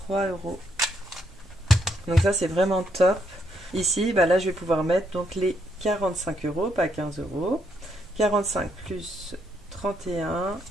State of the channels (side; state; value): both; normal; correlation 0.75